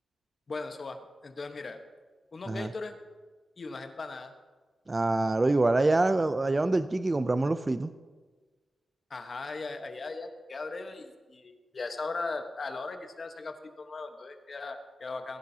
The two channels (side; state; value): both; normal; correlation 0.96